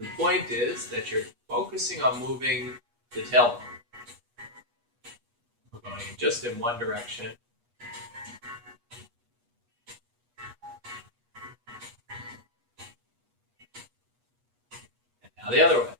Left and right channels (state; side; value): late; left; 8.3 ms